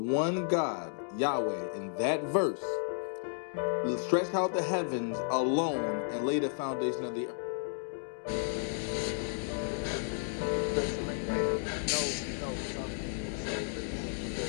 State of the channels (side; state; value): right; silent; digital silence